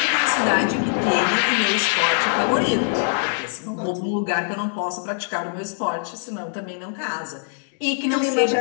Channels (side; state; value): right; silent; 57 dB below the other